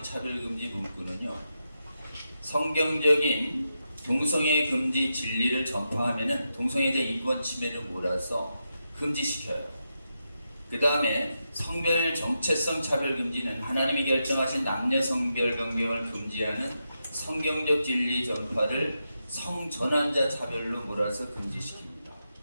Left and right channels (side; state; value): both; inverted; correlation -0.87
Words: 차별금지 문구는요, 성경적인 동성애 금지 진리를 전파하면은 동성애자 인권 침해를 몰아서 금지시켜요. 그 다음에 성별 정체성 차별금지는 하나님이 결정하신 남녀 성별 변경을 금지하는 성경적 진리 전파를 성전환자 차별로 몰아서 금지시킵니다.